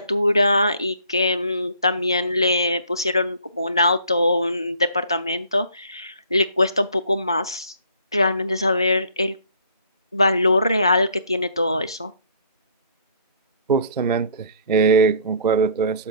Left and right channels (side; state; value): both; inverted; correlation -0.57